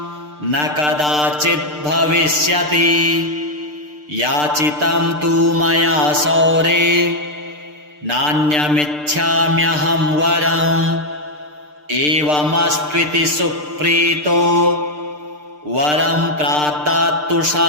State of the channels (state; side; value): late; left; 6.7 ms